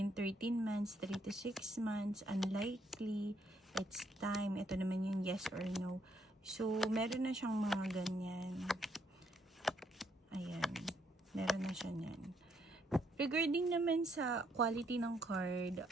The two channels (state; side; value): normal; both; correlation 0.72